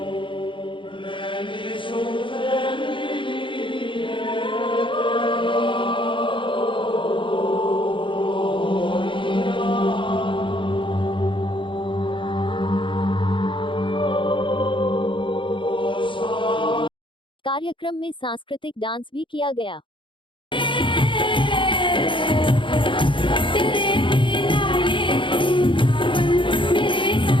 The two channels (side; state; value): right; late; 0.24 ms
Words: कार्यक्रम में सांस्कृतिक डांस भी किया गया।